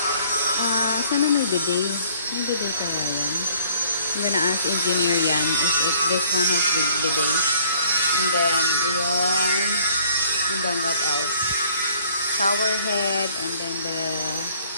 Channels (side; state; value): both; inverted; correlation -0.58